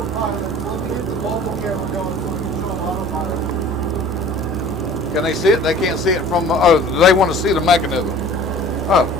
Let me hit the mobile camera going so we can show them autopilot. Can they see it? They can't see it from, oh, they want to see the mechanism. Oh.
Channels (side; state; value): both; normal; correlation 0.46